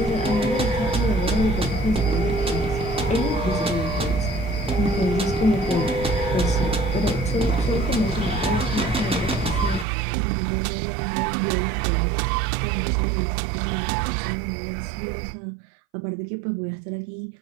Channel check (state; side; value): drops out; left; at 9.9 s